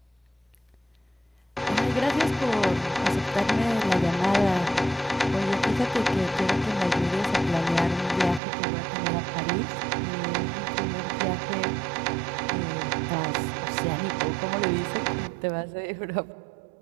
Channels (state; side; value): drops out; left; at 8.4 s